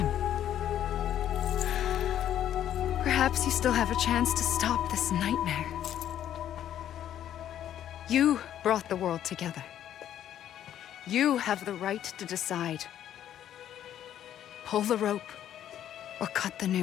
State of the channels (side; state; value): right; quieter; 10.9 dB